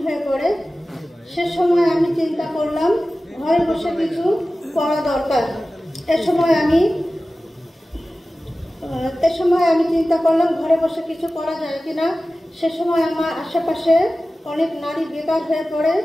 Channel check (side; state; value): both; normal; correlation 0.96